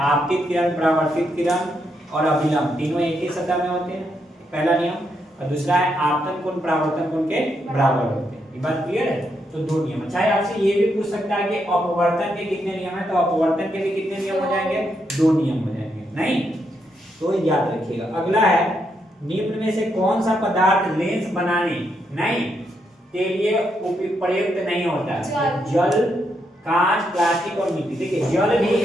आपतित किरण, परावर्तित किरण और अभिलंब तीनों एक ही सतह में होते हैं, पहला नियम। और दूसरा है आपतन कोण परावर्तन कोण के बराबर होते हैं। ये बात क्लियर है। तो दो नियम। चाहे आपसे ये भी पूछ सकता है कि अपवर्तन के कितने नियम है, तो अपवर्तन के भी कितने नियम हो जाएंगे, दो नियम हो जाएंगे नहीं। तो याद रखिएगा। अगला है निम्न में से कौन सा पदार्थ लेंस बनाने नहीं के लिए प्रयुक्त नहीं होता, जल, कांच, प्लास्टिक और मिट्टी। देखिए जल भी एक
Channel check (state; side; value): normal; both; correlation 0.79